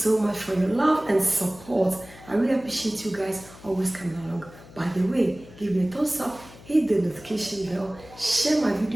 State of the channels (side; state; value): left; noise; hum, 20 dB below the sound